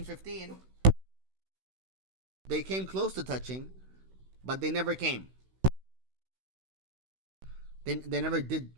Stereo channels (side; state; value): left; late; 16 ms